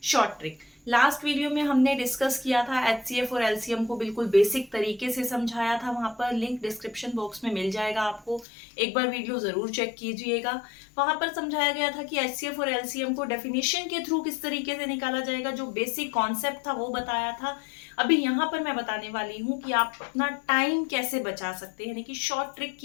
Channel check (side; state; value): right; drops out; at 8.5 s